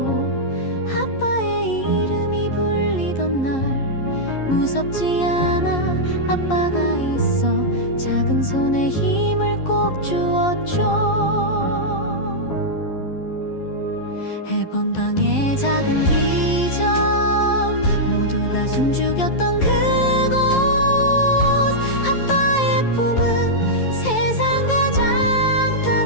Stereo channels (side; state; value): right; late; 11 ms